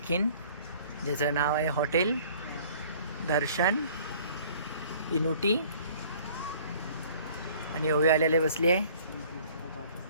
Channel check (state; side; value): inverted; both; correlation -0.53